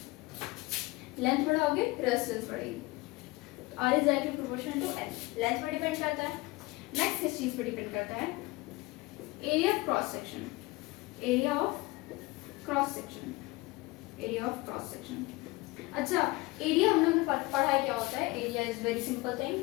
लेंथ बढ़ाओगे रेजिस्टेंस बढ़ेगी। R is directly proportional to L. Length पर डिपेंड करता है। नेक्स्ट किस चीज पर डिपेंड करता है? Area of cross section. Area of cross section, area of cross section. अच्छा, एरिया हम लोग ने पढ़ा है क्या होता है? Area is very simple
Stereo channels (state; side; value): quieter; right; 22.1 dB